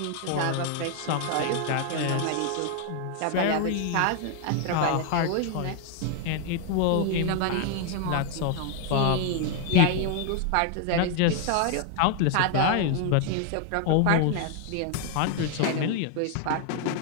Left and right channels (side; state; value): both; different; correlation 0.00